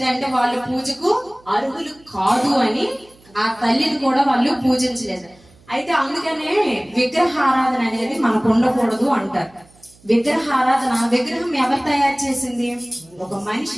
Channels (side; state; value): right; noise; hum, 28 dB below the sound